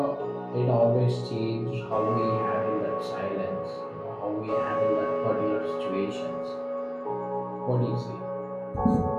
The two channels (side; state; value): both; identical; correlation 1.00